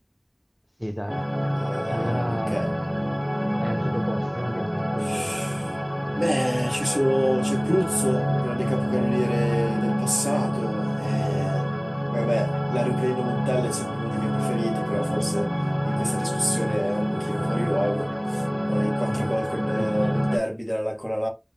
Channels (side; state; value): both; identical; correlation 1.00